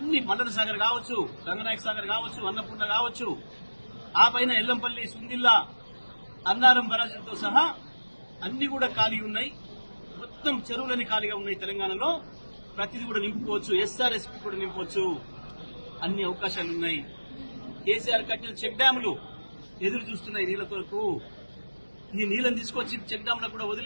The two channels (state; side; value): inverted; both; correlation -1.00